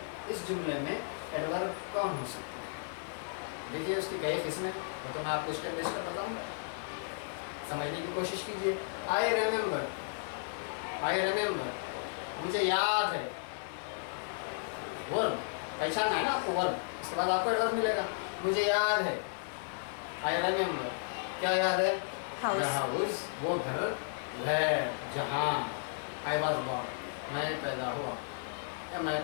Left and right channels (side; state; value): right; silent; digital silence